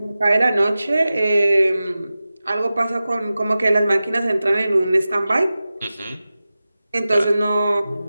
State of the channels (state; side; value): inverted; both; correlation -0.95